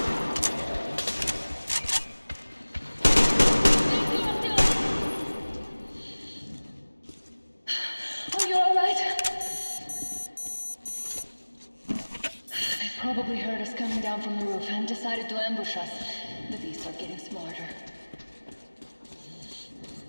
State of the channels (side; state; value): both; inverted; correlation -1.00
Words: Probably heard us coming down from the roof and decided to ambush us. The beasts are getting smarter.